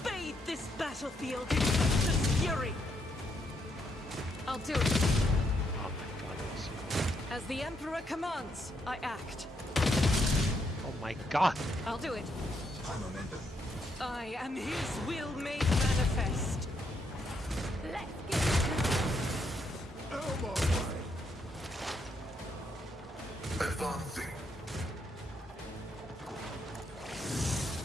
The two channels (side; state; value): both; normal; correlation 0.77